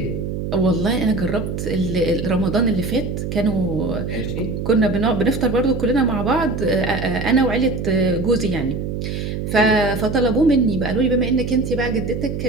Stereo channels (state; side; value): noise; right; hum, 4 dB below the sound